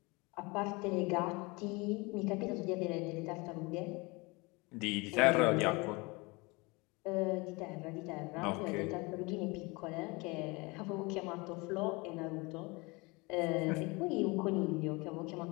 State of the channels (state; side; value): quieter; right; 26.1 dB